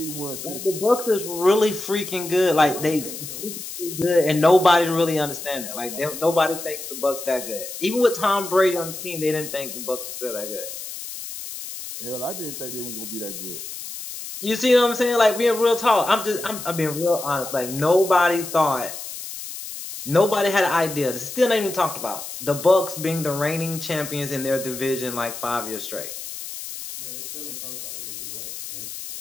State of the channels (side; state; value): left; noise; hiss, 9 dB below the sound